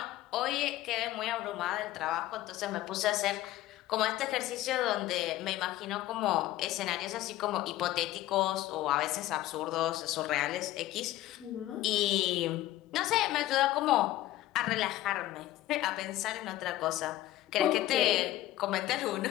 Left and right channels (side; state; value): right; quieter; 15.2 dB